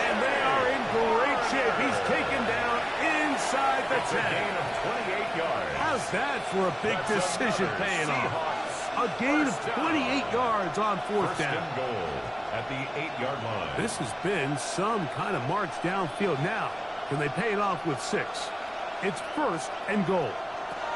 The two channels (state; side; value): identical; both; correlation 1.00